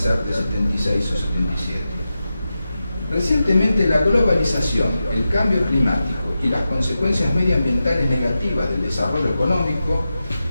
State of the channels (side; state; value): both; inverted; correlation -0.91